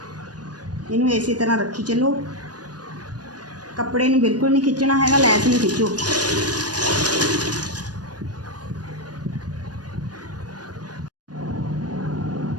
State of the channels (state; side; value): late; left; 0.69 ms